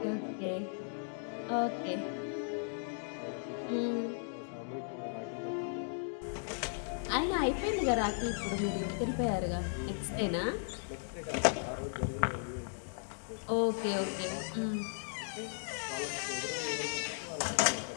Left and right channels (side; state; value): right; silent; digital silence